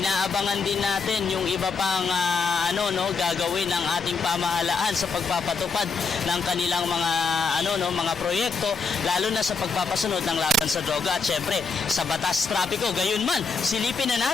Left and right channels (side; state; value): right; quieter; 4.7 dB